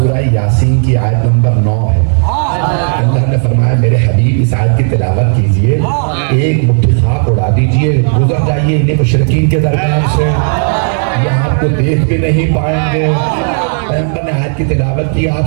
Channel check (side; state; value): left; silent; 59 dB below the other